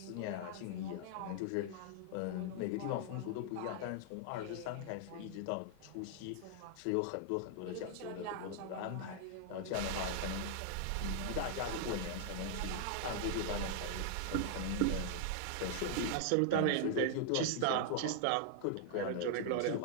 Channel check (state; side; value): different; both; correlation -0.01